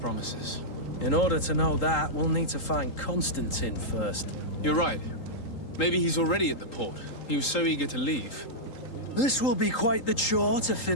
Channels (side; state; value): right; late; 3.8 ms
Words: In order to know that, we'll need to find Constantine first. You're right. Maybe he's already at the port. He was so eager to leave. This will be quite the chore to